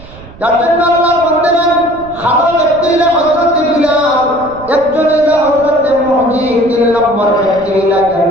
যার জন্য আল্লাহর বান্দারা ভালো ব্যক্তি হইলে হযরত বিলাল, একজন হইলে হযরত মুহাম্মদ, তিন নম্বর ব্যক্তি হইলে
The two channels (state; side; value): noise; right; rumble, 19 dB below the sound